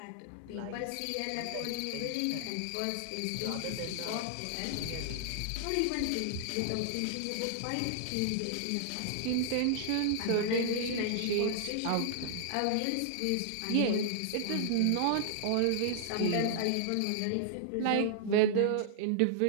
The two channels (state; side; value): different; both; correlation -0.01